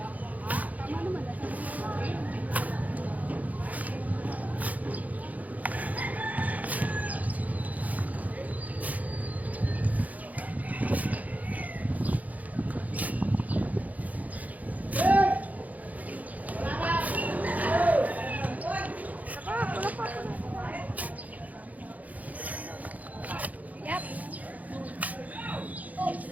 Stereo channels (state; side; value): late; left; 0.076 ms